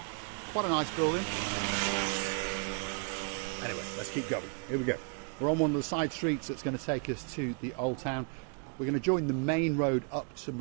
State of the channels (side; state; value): left; quieter; 39.2 dB